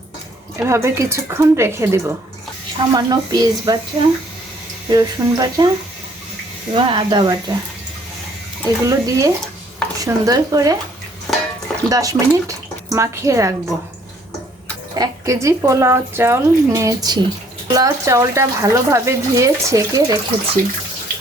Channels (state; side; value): normal; both; correlation 0.62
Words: এভাবে কিছুক্ষণ রেখে দেব। সামান্য পেঁয়াজ বাটা, রসুন বাটা এবং আদা বাটা এগুলো দিয়ে সুন্দর করে 10 মিনিট মাখিয়ে রাখবো। 1 কেজি পোলাও চাউল নিয়েছি। পোলাও চাউলটা ভালোভাবে ধুয়ে ছেঁকে রেখেছি